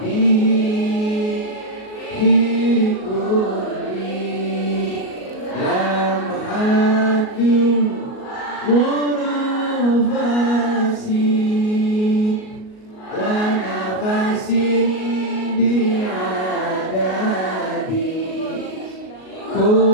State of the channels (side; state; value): right; late; 38 ms